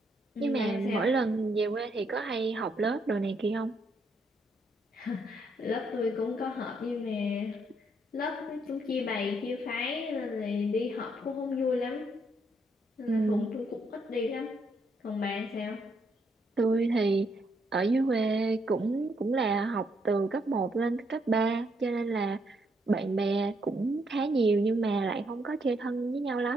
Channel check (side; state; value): both; normal; correlation 0.74